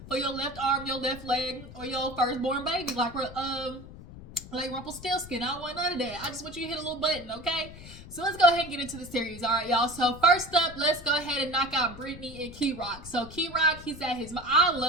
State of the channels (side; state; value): left; noise; rumble, 15 dB below the sound